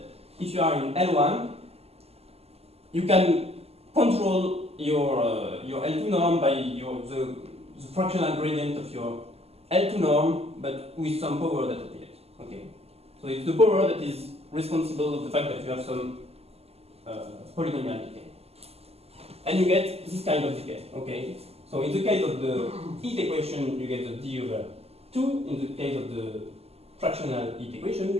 if you are in L1, you can control your L2 norm by the fractional gradient of your L2 norm, but with some power that appears. Okay, so it's the power that is responsible of the fact that you have some polynomial decay, and you get this kind of decay. Okay, so in the case of the heat equation, you get the d over 2. In the case of the fractional heat equation,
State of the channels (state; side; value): late; left; 0.29 ms